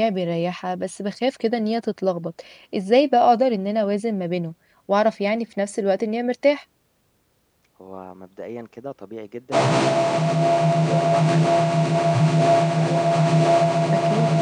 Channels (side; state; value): both; identical; correlation 1.00